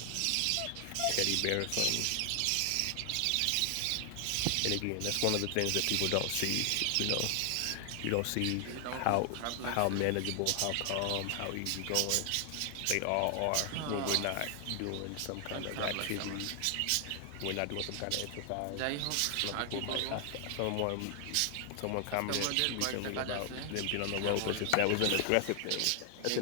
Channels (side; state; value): both; different; correlation 0.00